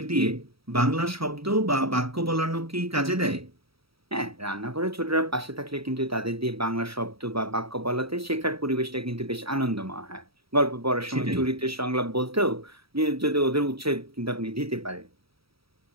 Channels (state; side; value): late; left; 0.76 ms